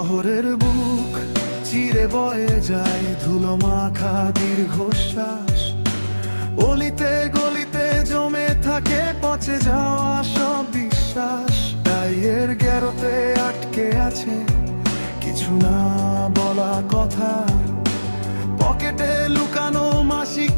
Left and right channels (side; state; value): both; inverted; correlation -1.00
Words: বুক চিরে বয়ে যায় ধুলো মাখা দীর্ঘশ্বাস। অলিতে গলিতে জমে থাকে পচে যাওয়া সব বিশ্বাস। গায়ের গেরোতে আটকে আছে কিছু না বলা কথা। পকেটে লুকানো মাসিক